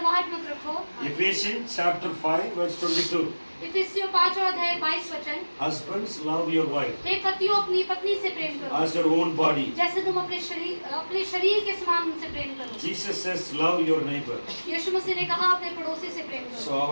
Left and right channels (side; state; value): both; inverted; correlation -1.00